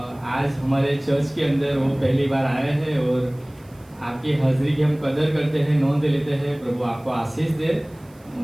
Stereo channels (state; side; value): noise; right; hiss, 30 dB below the sound